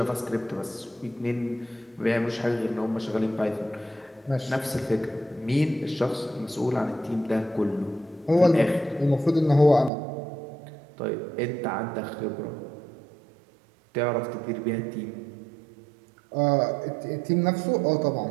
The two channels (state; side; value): drops out; left; at 9.9 s